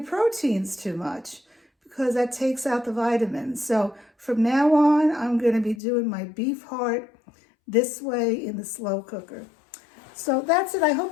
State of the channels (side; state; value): right; drops out; at 5.8 s